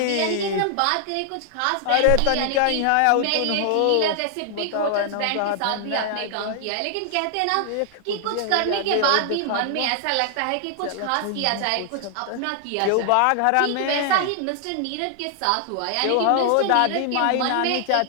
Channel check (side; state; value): both; different; correlation 0.00